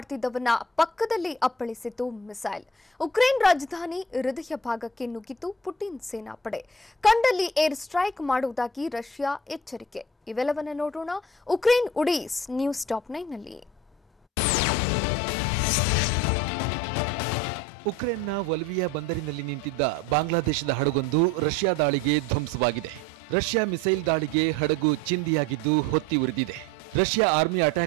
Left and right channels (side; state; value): both; normal; correlation 0.43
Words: ಪಕ್ಕದಲ್ಲಿ ಅಪ್ಪಳಿಸಿತು ಮಿಸೈಲ್. ಉಕ್ರೇನ್ ರಾಜಧಾನಿ ಹೃದಯ ಭಾಗಕ್ಕೆ ನುಗ್ಗಿತು ಪುಟಿನ್ ಸೇನಾಪಡೆ. ಕಂಡಲ್ಲಿ ಏರ್ ಸ್ಟ್ರೈಕ್ ಮಾಡುವುದಾಗಿ ರಷ್ಯಾ ಎಚ್ಚರಿಕೆ. ಇವೆಲ್ಲವನ್ನ ನೋಡೋಣ ಉಕ್ರೇನ್ ಉಡೀಸ್ ನ್ಯೂಸ್ ಟಾಪ್ 9 ನಲ್ಲಿ. ಉಕ್ರೇನ್ನ ವಲ್ವಿಯಾ ಬಂದರಿನಲ್ಲಿ ನಿಂತಿದ್ದ ಬಾಂಗ್ಲಾದೇಶದ ಹಡಗೊಂದು ರಷ್ಯಾ ದಾಳಿಗೆ ಧ್ವಂಸವಾಗಿದೆ. ರಷ್ಯಾ ಮಿಸೈಲ್ ದಾಳಿಗೆ ಹಡಗು ಚಿಂದಿಯಾಗಿದ್ದು ಹೊತ್ತಿ ಉರಿದಿದೆ. ರಷ್ಯಾ ಆರ್ಮಿ